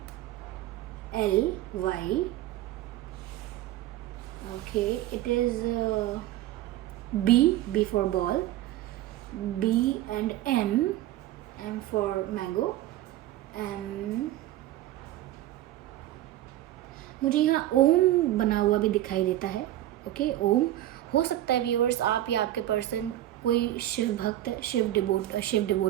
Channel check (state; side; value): quieter; left; 14.2 dB